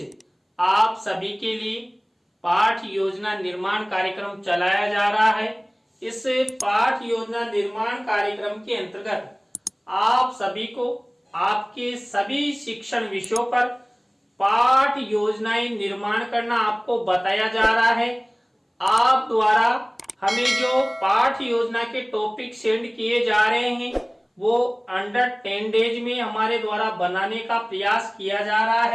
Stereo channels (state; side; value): identical; both; correlation 1.00